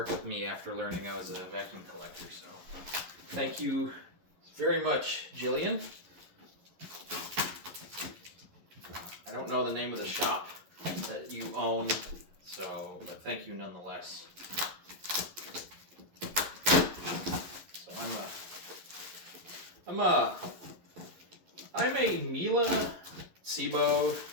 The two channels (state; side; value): late; left; 11 ms